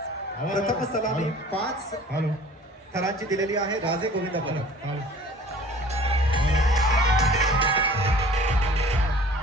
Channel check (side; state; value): both; normal; correlation 0.47